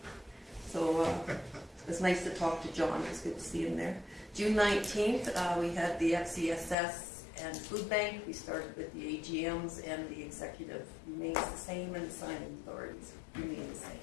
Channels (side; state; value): right; drops out; at 6.8 s